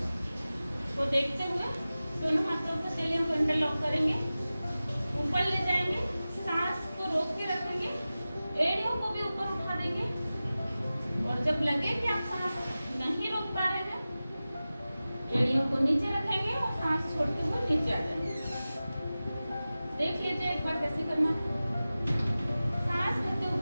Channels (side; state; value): both; inverted; correlation -0.96